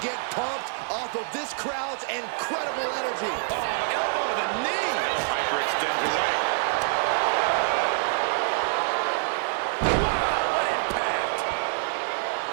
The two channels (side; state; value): left; silent; digital silence